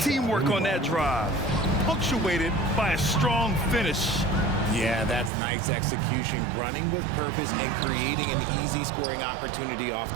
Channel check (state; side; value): drops out; left; at 5.3 s